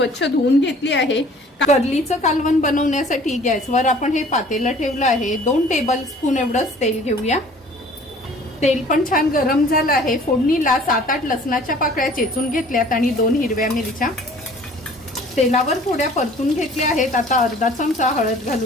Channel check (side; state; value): both; normal; correlation 0.51